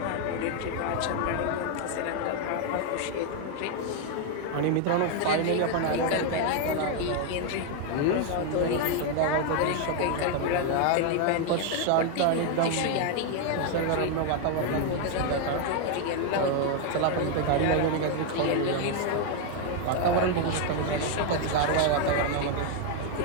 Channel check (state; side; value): different; both; correlation 0.01